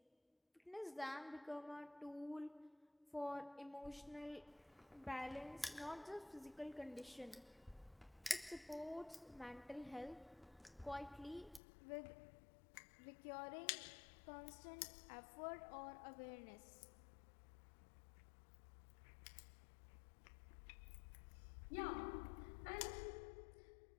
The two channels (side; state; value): right; drops out; at 11.6 s